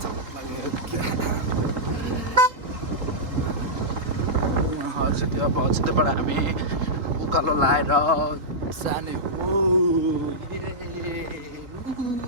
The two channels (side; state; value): left; late; 3.8 ms